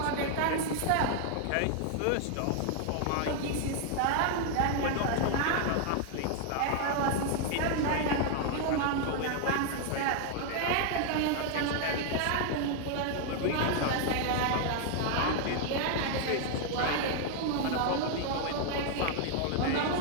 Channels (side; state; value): both; different; correlation 0.00